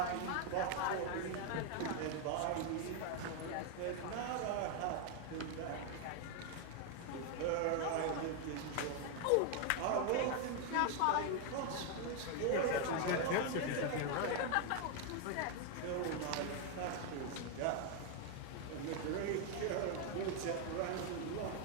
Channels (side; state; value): both; different; correlation 0.01